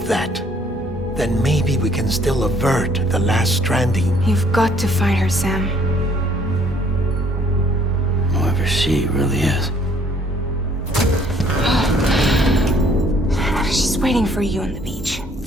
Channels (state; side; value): normal; both; correlation 0.61